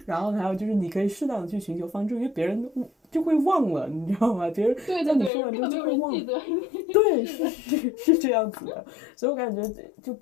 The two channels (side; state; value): right; drops out; at 5.3 s